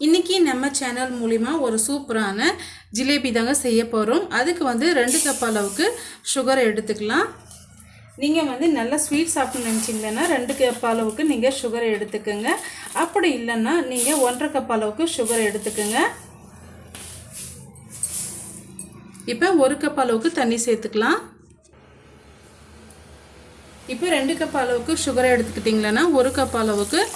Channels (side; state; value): both; identical; correlation 1.00